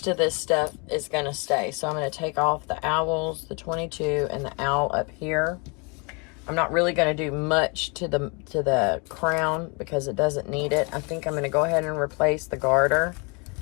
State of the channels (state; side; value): quieter; right; 31.9 dB